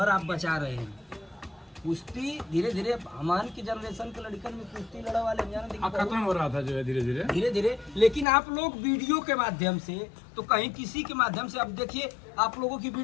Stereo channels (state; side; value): drops out; right; at 8.2 s